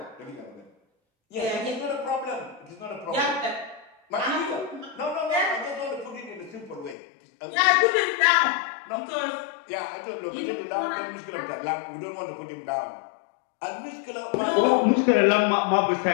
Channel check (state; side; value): drops out; right; at 7.0 s